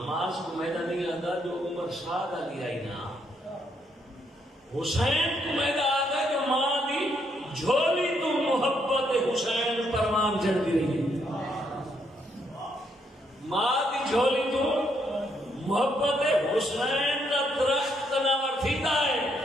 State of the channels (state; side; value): normal; both; correlation 0.74